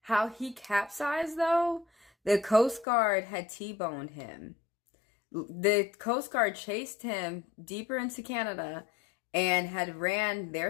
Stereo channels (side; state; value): right; drops out; at 2.9 s